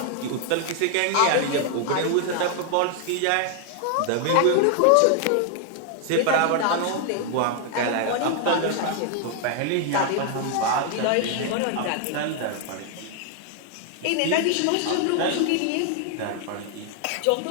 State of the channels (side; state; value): both; different; correlation 0.00